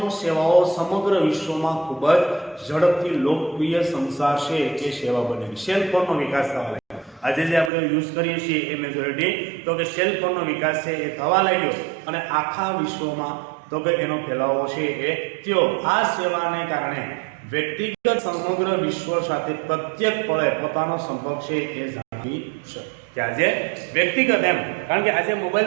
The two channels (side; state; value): left; drops out; at 7.7 s